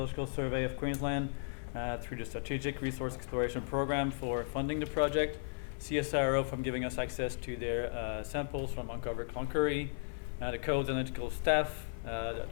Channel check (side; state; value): right; silent; 54 dB below the other